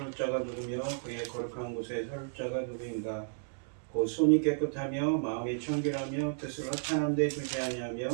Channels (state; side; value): silent; left; digital silence